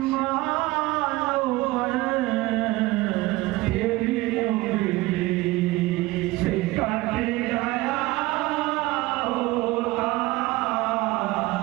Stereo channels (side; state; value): left; quieter; 19.9 dB